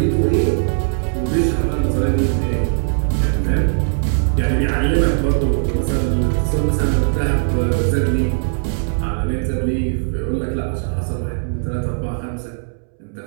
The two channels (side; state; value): left; silent; 66 dB below the other